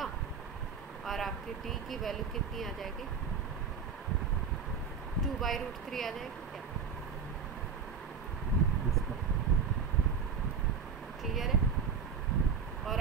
और आपकी d की वैल्यू कितनी आ जाएगी, 2/√3 आ जाएगी क्या? क्लियर है? और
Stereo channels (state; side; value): quieter; left; 6.1 dB